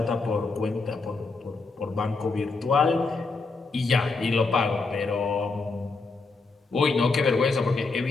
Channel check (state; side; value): quieter; right; 3.9 dB